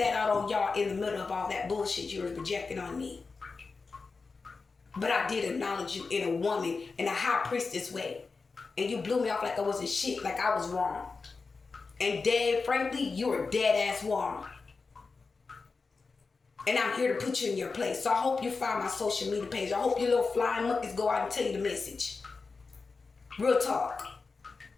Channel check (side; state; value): right; quieter; 4.4 dB